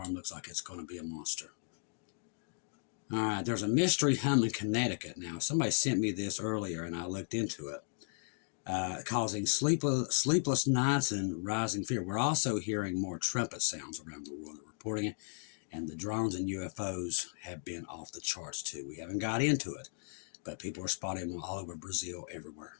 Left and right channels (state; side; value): silent; right; digital silence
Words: looks like it's going to be a monster. All right, there's a mystery hum in Connecticut now. Somebody sent me this earlier, and I looked into it. Causing sleepless nights and rising fear. We're also hearing more trumpet sounds around the world. They're reporting it, and the drones and UFOs have been off the charts too. We haven't got into it, but people are spotting them all over Brazil, everywhere